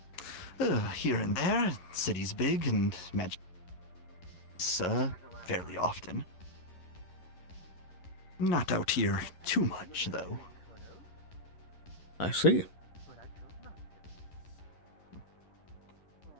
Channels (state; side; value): late; right; 11 ms